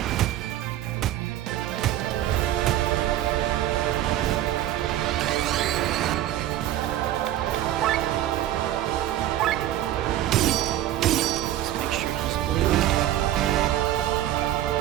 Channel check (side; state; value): left; quieter; 13.1 dB